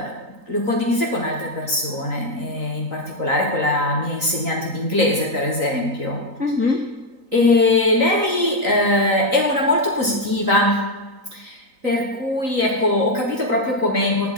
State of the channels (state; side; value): late; left; 3.9 ms